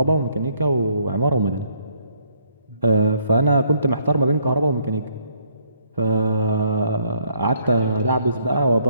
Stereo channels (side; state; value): both; inverted; correlation -0.68